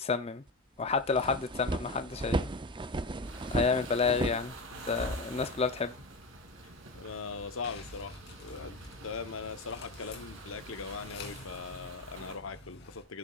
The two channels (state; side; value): quieter; right; 3.0 dB